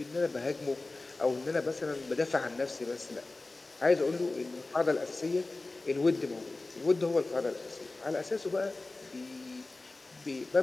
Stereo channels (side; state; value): right; quieter; 3.2 dB